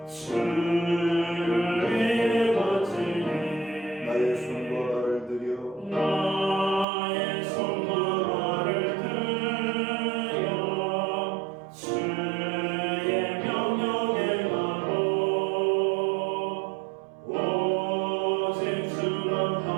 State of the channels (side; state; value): left; drops out; at 6.9 s